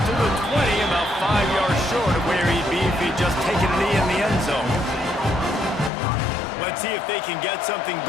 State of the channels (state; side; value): drops out; right; at 5.9 s